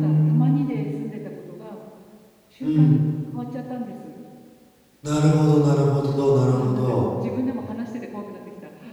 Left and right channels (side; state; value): both; identical; correlation 1.00